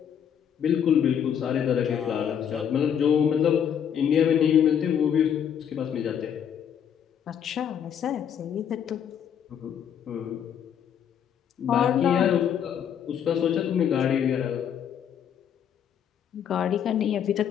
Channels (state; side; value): quieter; right; 8.6 dB